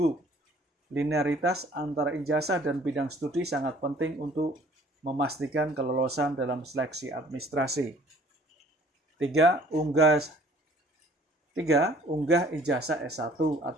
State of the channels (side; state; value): both; normal; correlation 0.55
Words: linearitas antara ijazah dan bidang studi sangat penting untuk memastikan kelolosan dalam seleksi administrasi. 3. Unggah ijazah S1